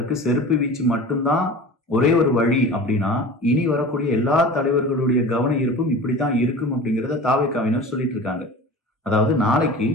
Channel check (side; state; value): both; normal; correlation 0.36